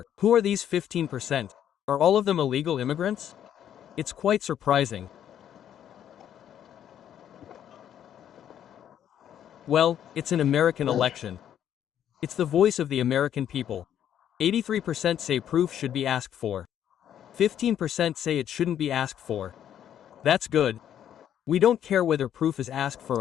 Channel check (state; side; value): quieter; right; 10.1 dB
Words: Who are these 15%? Are all of them illegal immigrants? It's quite surprising. Well, it's an American election. It's the voice of the American people. 83% say proof should be asked for. 15% say it shouldn't be asked for. That's good. We don't care whether proof is asked for